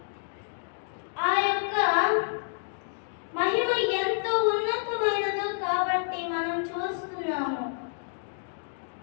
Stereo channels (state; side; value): silent; right; digital silence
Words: ఆ యొక్క మహిమ ఎంతో ఉన్నతమైనదో కాబట్టి మనం చూస్తున్నాము.